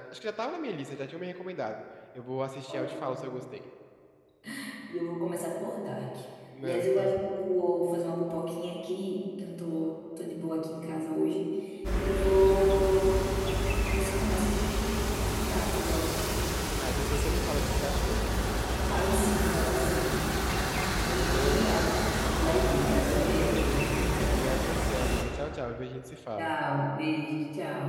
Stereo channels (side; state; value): both; identical; correlation 1.00